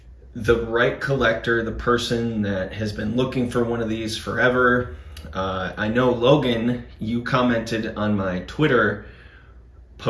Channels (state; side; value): identical; both; correlation 1.00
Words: the right collector, the person that has been looking for one of these forever. I know Logan, you commented on my Twitter